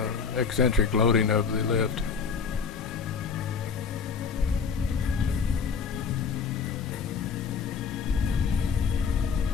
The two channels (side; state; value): right; quieter; 5.9 dB